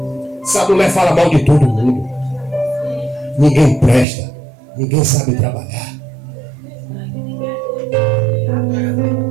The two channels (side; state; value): left; drops out; at 4.0 s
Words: Essa mulher fala mal de todo mundo. Ninguém presta. Ninguém sabe trabalhar.